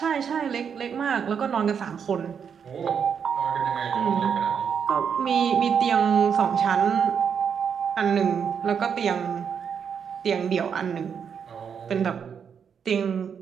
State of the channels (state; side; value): quieter; left; 7.2 dB